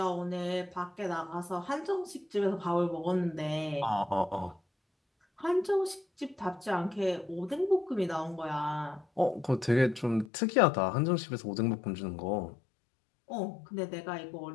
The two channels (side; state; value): right; drops out; at 10.2 s